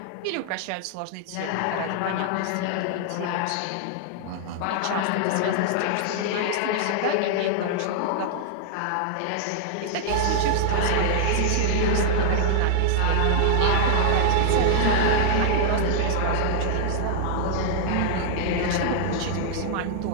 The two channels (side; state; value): both; different; correlation 0.00